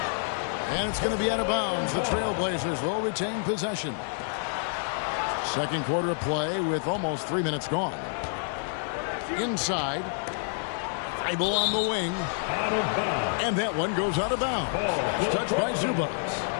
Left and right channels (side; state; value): right; silent; digital silence